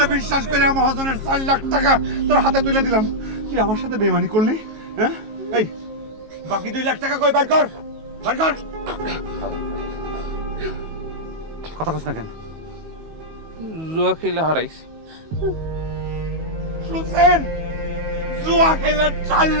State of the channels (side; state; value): left; late; 19 ms